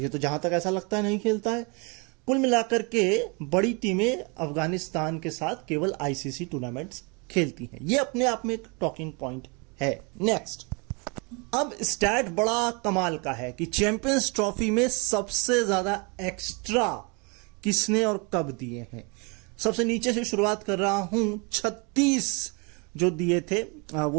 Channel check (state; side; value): quieter; left; 31.4 dB